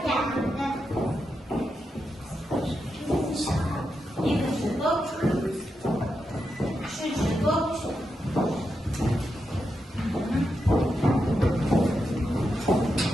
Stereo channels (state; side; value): normal; both; correlation 0.86